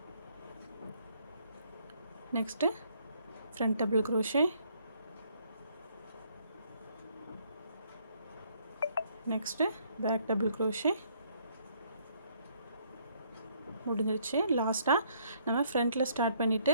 next front double crochet, next back double crochet. முடிஞ்சிருச்சு. லாஸ்ட்டாக நம்ம ஃப்ரண்ட்டில் ஸ்டார்ட்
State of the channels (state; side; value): inverted; both; correlation -0.67